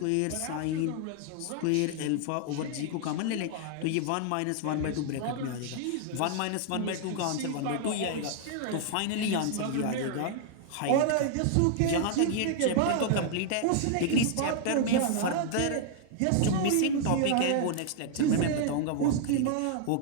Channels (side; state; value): both; different; correlation 0.00